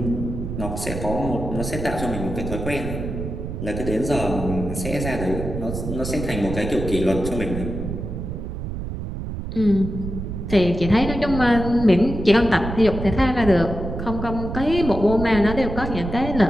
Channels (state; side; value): noise; right; rumble, 6 dB below the sound